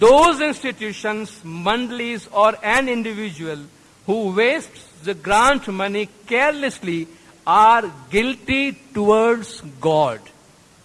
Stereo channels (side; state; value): both; identical; correlation 1.00